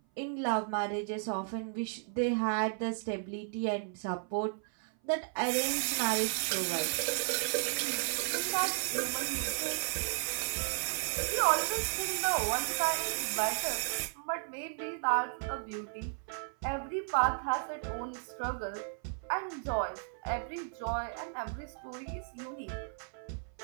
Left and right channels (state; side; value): silent; left; 55 dB below the other